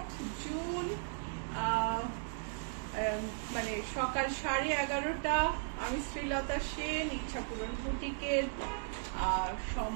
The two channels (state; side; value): silent; left; digital silence